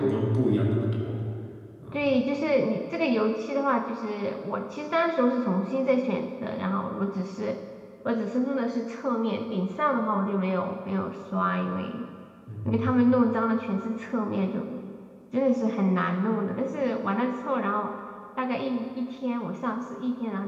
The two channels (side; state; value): both; identical; correlation 1.00